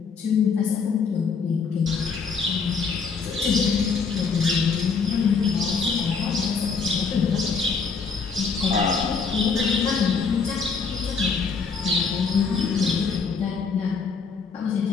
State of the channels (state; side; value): quieter; right; 5.3 dB